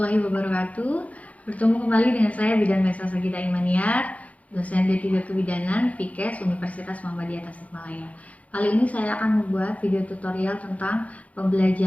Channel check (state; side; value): late; right; 0.068 ms